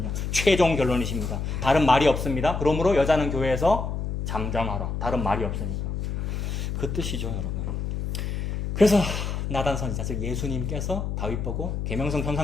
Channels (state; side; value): noise; left; hum, 3 dB below the sound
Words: 최종 결론이십니다. 다른 말이 없습니다. 그러므로 여자는 교회에서 잠잠하라. 다른 말이 없으니까. 그 뜻이죠, 여러분. 그래서 나단 선지자, 즉 예수님께서 다윗 보고 계명성